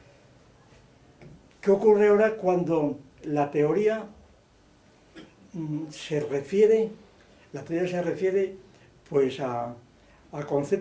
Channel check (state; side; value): identical; both; correlation 1.00